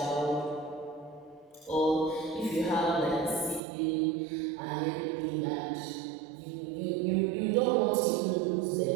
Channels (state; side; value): drops out; left; at 3.6 s